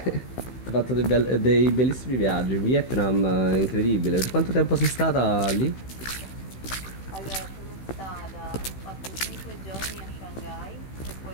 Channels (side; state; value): right; late; 16 ms